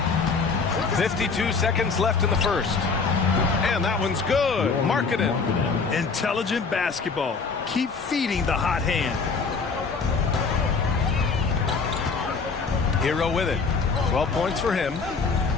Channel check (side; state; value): right; quieter; 4.7 dB